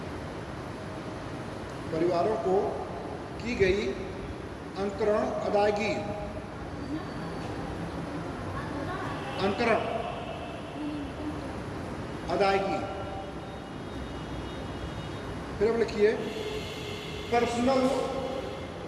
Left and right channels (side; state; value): both; identical; correlation 1.00